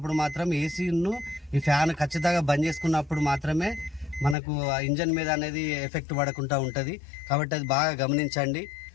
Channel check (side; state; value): right; drops out; at 4.4 s